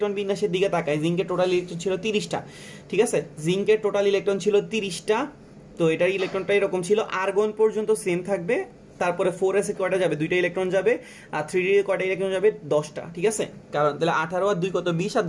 বিন্যাসের দিকে তাকাই, জিঙ্কের টোটাল ইলেকট্রন ছিল 30টা, ঠিক আছে? জিঙ্কের টোটাল ইলেকট্রন ছিল 30টা। তো এটার ইলেকট্রনটা এরকম ছিল, আর্গন পর্যন্ত সেম থাকবে, তারপরে 4s এ কয়টা যাবে, 2টা ইলেকট্রন যাবে, আর 3d এ কয়টা ইলেকট্রন যাবে, 10টা, ঠিক আছে? কারণ তাহলে 18 আর 2 কত, 20, আর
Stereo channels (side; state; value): both; identical; correlation 1.00